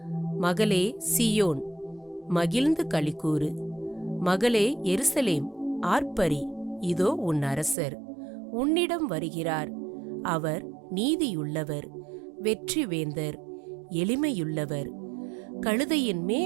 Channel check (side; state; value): left; drops out; at 7.8 s